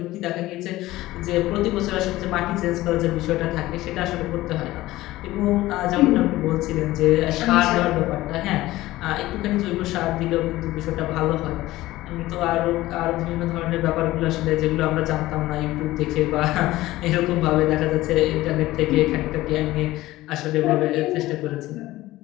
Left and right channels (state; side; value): quieter; right; 17.1 dB